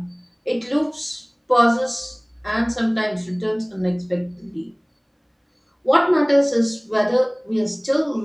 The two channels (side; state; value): both; identical; correlation 1.00